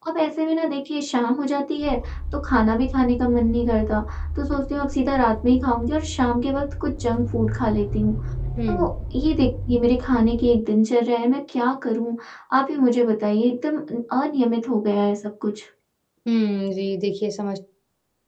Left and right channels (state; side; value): identical; both; correlation 1.00